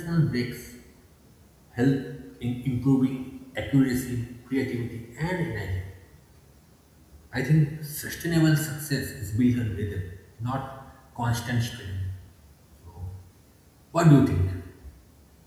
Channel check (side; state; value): both; identical; correlation 1.00